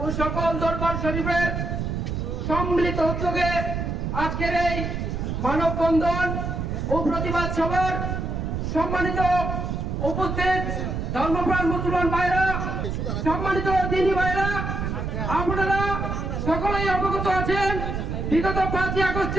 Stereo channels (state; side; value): noise; right; rumble, 2 dB below the sound